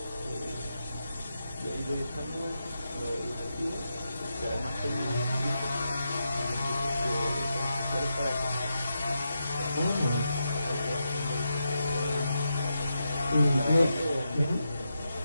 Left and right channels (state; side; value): inverted; both; correlation -0.86